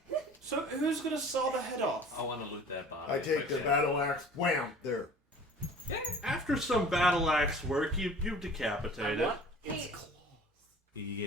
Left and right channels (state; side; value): normal; both; correlation 0.45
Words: So who's gonna saw the head off? I want to loot that body. I take the battle axe. Wham! There. After some battle axe work, you decapitate it. What? Hey,